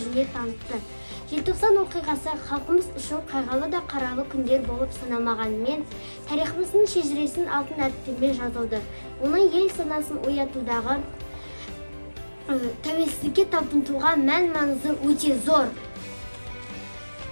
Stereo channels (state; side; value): inverted; both; correlation -1.00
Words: жүзіне танытты. Желтоқсан оқиғасы халқымыз үшін қайғылы да қаралы күндер болып саналмағанымен, тарихымыздың шежіресін алтын әріптермен жазылды. Оның ел санасын оятудағы тәуелсіздікке талпынуға мән-маңызы өте зор.